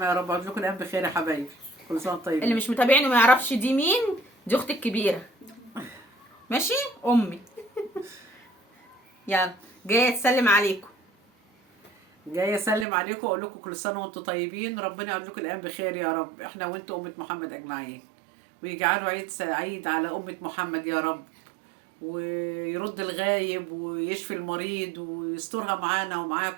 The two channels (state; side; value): drops out; left; at 12.9 s